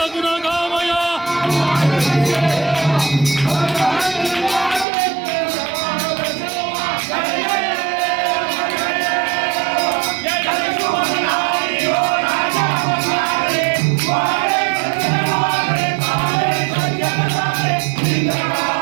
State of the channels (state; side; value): drops out; left; at 4.9 s